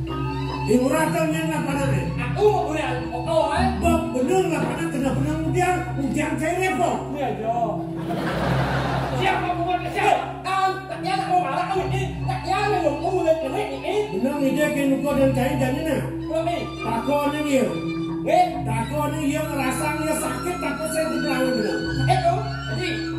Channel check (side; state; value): both; identical; correlation 1.00